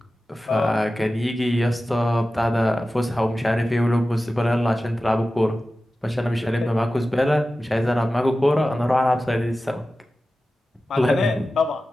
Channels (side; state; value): both; normal; correlation 0.95